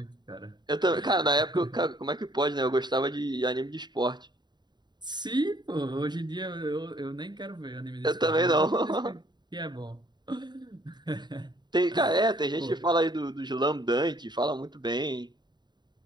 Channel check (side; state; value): left; late; 0.21 ms